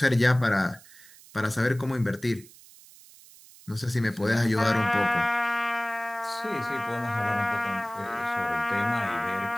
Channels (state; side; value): noise; right; hiss, 22 dB below the sound